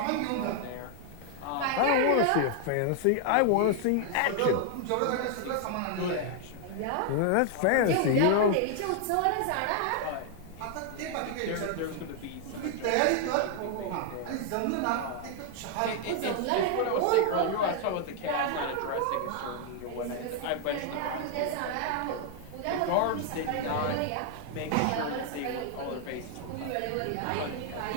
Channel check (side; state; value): both; different; correlation 0.00